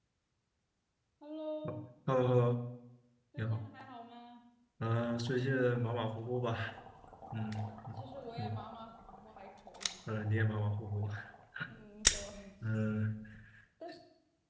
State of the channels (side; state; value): both; identical; correlation 1.00